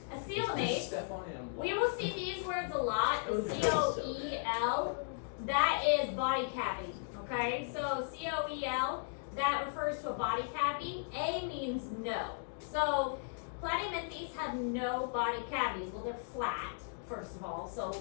a coelnate. Step on it and walk. We will see these words a lot. C-O-E-L, that is body cavity, okay? So C-O-E-L, that refers to a body cavity. A means no. So Platyhelminthes have no body cavities. Well, they're flat, first of all, so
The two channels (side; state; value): right; silent; digital silence